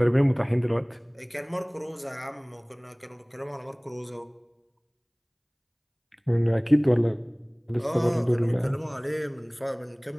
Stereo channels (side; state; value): both; identical; correlation 1.00